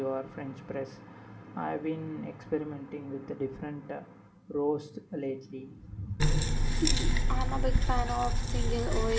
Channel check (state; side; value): identical; both; correlation 1.00